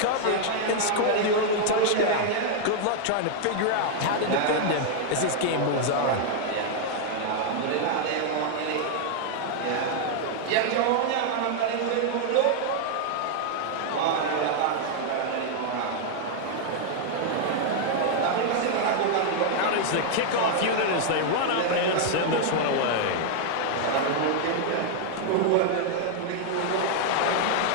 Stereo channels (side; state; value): both; different; correlation 0.00